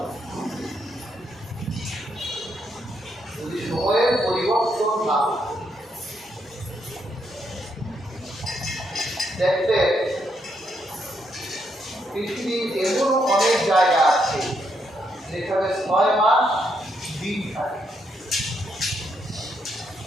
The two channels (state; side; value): normal; both; correlation 0.77